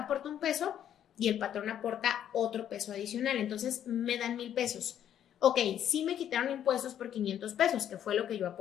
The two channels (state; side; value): quieter; right; 10.2 dB